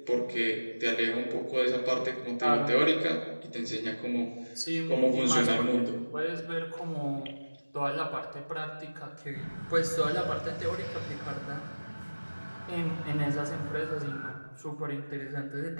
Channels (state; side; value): inverted; both; correlation -1.00